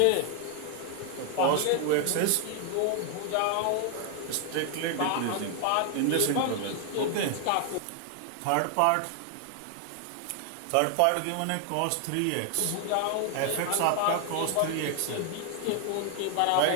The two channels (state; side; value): different; both; correlation 0.00